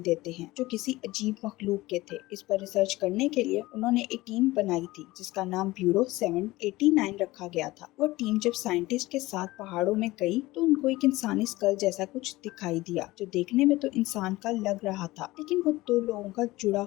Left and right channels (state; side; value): quieter; right; 19.2 dB